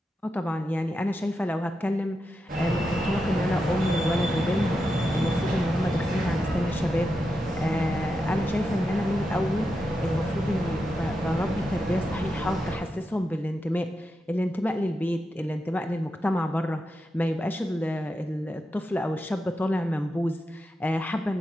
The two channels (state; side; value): normal; both; correlation 0.87